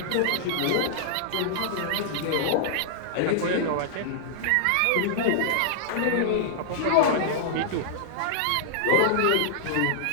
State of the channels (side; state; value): both; different; correlation -0.01